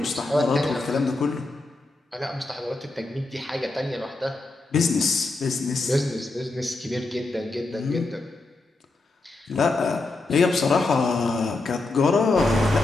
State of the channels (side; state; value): right; quieter; 3.2 dB